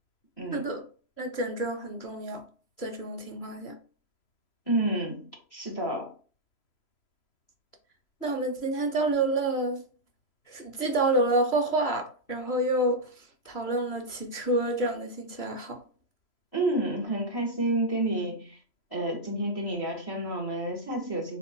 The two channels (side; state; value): right; late; 3.0 ms